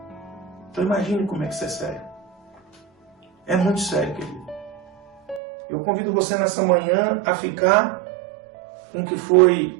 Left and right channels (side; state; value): left; drops out; at 5.4 s